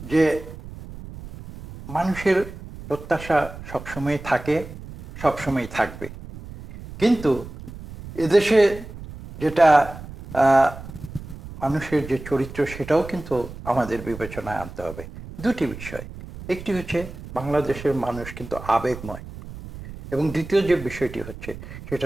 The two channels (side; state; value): right; noise; rumble, 13 dB below the sound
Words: যে মানুষের প্রত্যাশা সবসময় থাকে, সবসময় থাকবে। কিন্তু এদেশে যেটা মানুষের যে চরিত্র, সেটাও কিন্তু আমাদের বিবেচনায় আনতে হবে। দুটি বিষয়, একটি হচ্ছে বাংলাদেশের মানুষ কিন্তু আবেগময়, এবং দ্বিতীয় যে বিষয়টি হচ্ছে সেটা